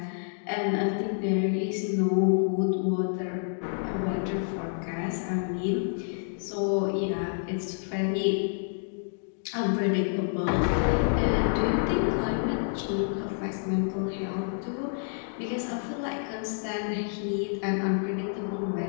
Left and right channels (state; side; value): silent; right; digital silence